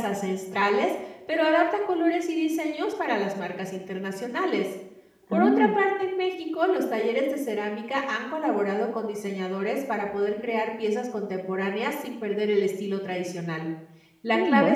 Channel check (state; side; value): identical; both; correlation 1.00